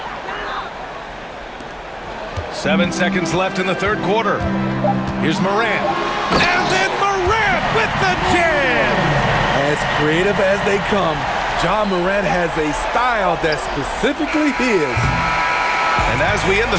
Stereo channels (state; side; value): identical; both; correlation 1.00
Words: Seven seconds left in the third quarter. Here's Morant. And then Morant with the jam! As creative as they come, Ja Morant has a style that's specifically his. And as we end the